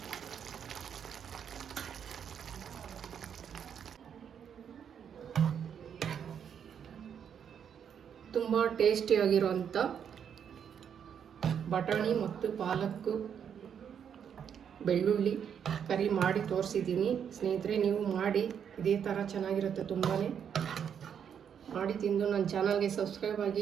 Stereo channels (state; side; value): quieter; left; 8.0 dB